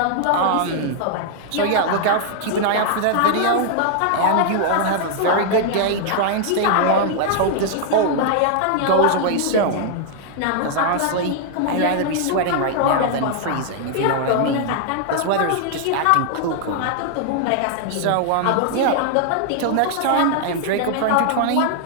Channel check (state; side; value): different; both; correlation 0.00